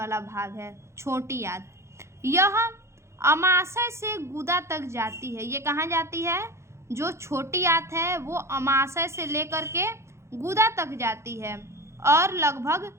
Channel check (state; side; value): late; left; 0.13 ms